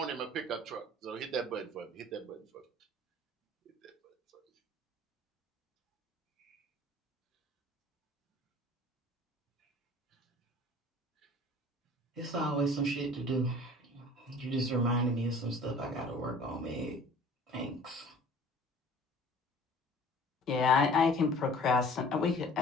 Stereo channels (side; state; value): both; normal; correlation 0.48